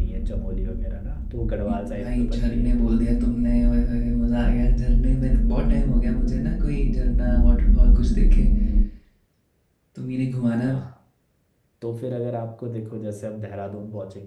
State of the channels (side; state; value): both; identical; correlation 1.00